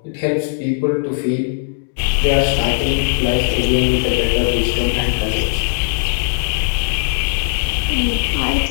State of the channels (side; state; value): right; silent; digital silence